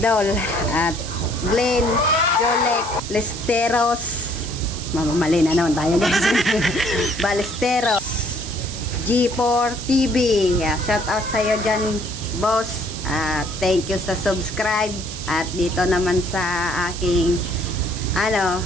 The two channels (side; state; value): right; noise; hiss, 10 dB below the sound